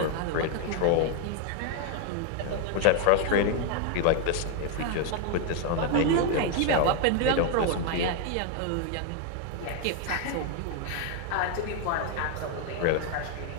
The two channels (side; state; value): both; different; correlation 0.01